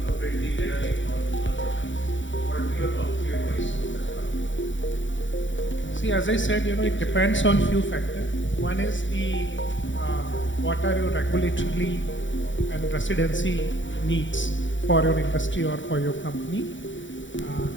See, as I said, it depends on few factors. One is the what are your regulatory and residency needs for your industry or for your company.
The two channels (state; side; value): late; right; 0.55 ms